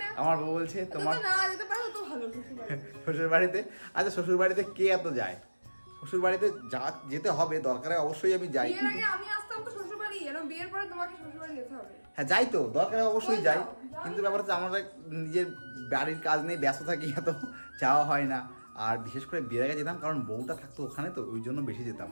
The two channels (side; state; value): both; inverted; correlation -1.00